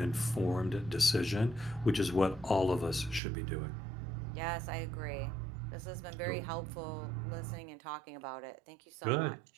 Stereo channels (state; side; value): drops out; left; at 3.2 s